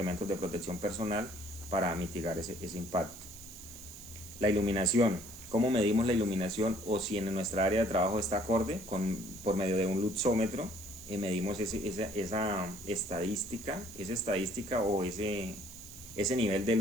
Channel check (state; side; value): noise; right; hiss, 16 dB below the sound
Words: de protección personal para mitigar ese impacto. La iluminación. ¿Cómo medimos la iluminación o si en nuestra área de trabajo está acorde? Por medio de un luxómetro medimos esa estadística o ese nivel de